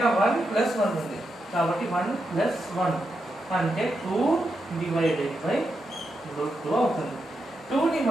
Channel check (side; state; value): both; normal; correlation 0.85